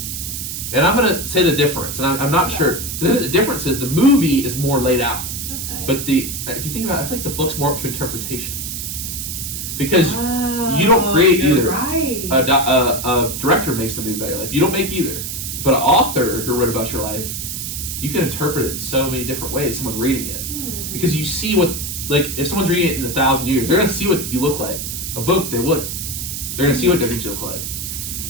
And I'm going to say the difference, and I'm not sure. The difference is the movie is more laid out. Okay. But if you think about it, I feel like the book's more up to interpretation. Because you don't create either. Right. A director makes the movie about your life. You don't make either. But an author who wrote about your life, you can interpret it in so many different ways, someone reading it. Because you see what, like, if someone's reading it in 1,000 years, they're going to see what you look like. A book, they wouldn't. They're going to see what different you look like.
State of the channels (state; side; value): noise; right; hiss, 5 dB below the sound